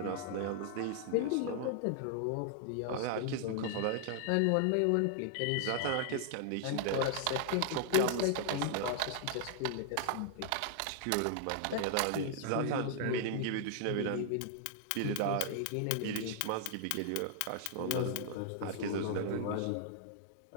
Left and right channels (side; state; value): both; different; correlation 0.00